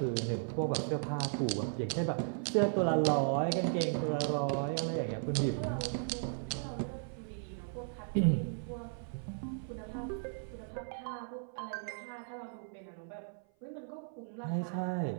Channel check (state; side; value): silent; left; 54 dB below the other